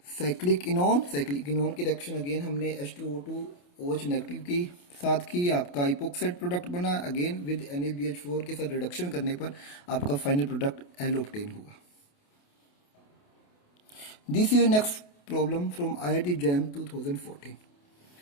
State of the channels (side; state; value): right; late; 28 ms